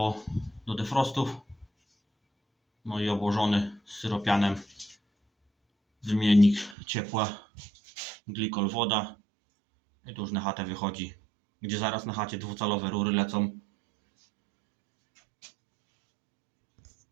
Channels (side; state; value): left; drops out; at 6.8 s